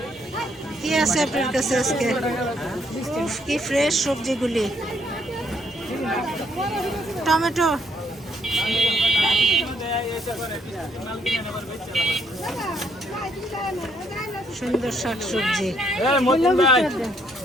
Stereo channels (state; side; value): normal; both; correlation 0.70